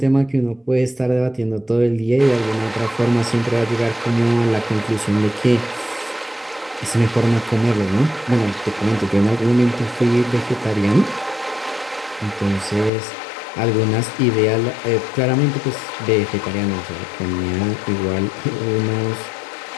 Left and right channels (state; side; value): drops out; right; at 12.9 s